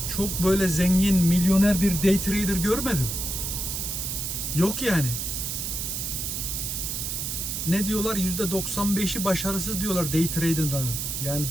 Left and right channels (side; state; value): right; noise; hiss, 3 dB below the sound